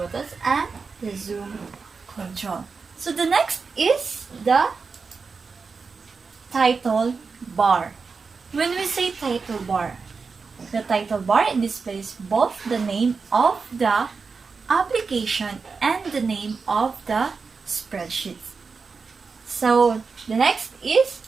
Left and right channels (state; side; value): quieter; left; 4.8 dB